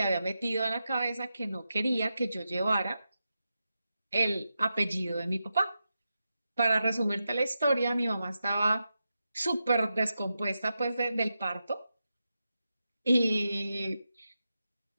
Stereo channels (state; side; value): inverted; both; correlation -0.89